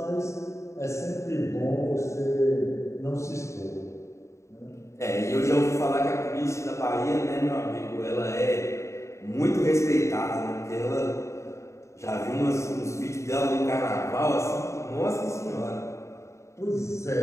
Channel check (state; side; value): late; right; 0.14 ms